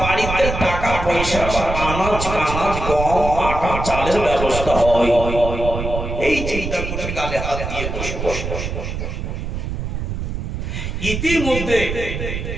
টাকা পয়সা বা আনাজ গম আটা চালের ব্যবস্থা হয়। এই চিন্তা করে গালে হাত দিয়ে বসে বসে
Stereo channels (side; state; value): right; noise; rumble, 4 dB below the sound